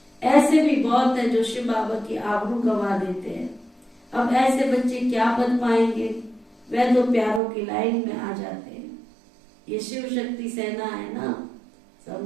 ऐसे भी बहुत है जो शिव बाबा की आबरू गवा देते हैं। अब ऐसे बच्चे क्या पद पाएंगे? वह तो प्यारों की लाइन में आ जाते हैं। ये शिव शक्ति सेना है ना,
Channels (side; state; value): left; drops out; at 7.4 s